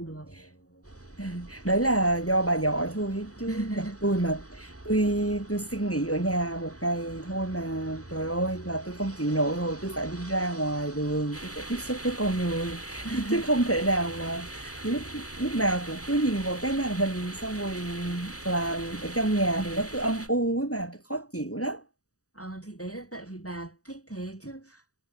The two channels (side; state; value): right; late; 0.66 ms